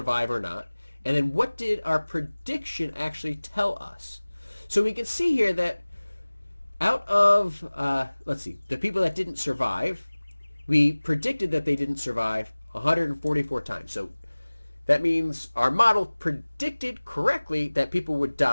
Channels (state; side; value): inverted; both; correlation -1.00